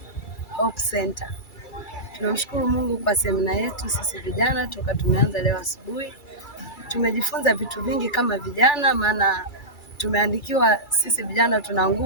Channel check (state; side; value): late; right; 2.3 ms